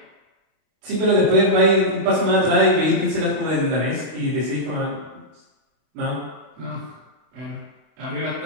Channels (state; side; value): late; left; 32 ms